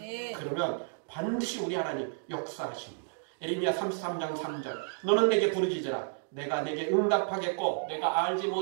그러면 반드시 우리 하나님 역사하십니다. 에레미야 33장 3절 너는 내게 부르짖으라 내가 내게 응답하겠고 내가 알지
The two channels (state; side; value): silent; left; digital silence